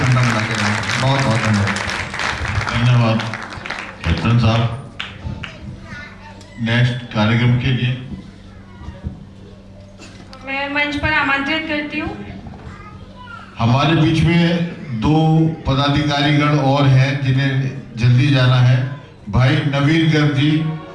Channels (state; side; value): identical; both; correlation 1.00